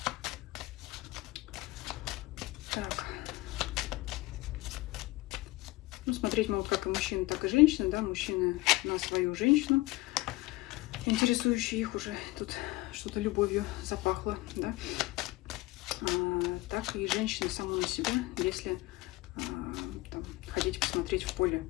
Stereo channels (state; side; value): quieter; right; 20.0 dB